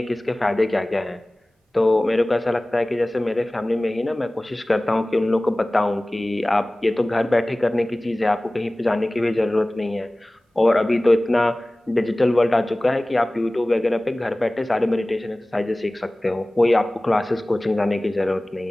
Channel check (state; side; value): normal; both; correlation 0.98